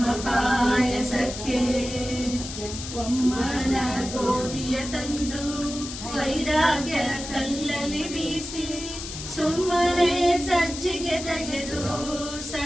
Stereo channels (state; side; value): noise; left; hiss, 9 dB below the sound